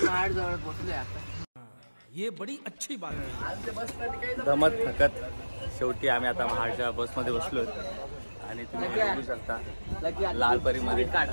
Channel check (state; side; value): inverted; both; correlation -1.00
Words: जवळ पोहोचलोय आता. ये बड़ी अच्छी बात है. दमत थकत शेवटी आम्ही आता महाडच्या बसमध्ये बसलो आणि तुम्ही बघू शकता लालपरीमध्ये काढ